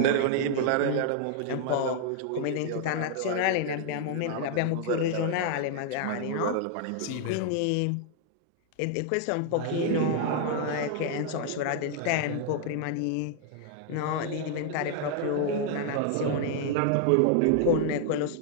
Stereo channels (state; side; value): different; both; correlation 0.00